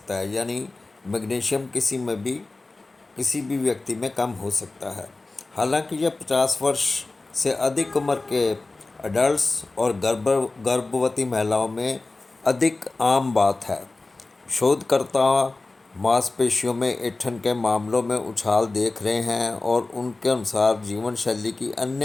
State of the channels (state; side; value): quieter; right; 3.3 dB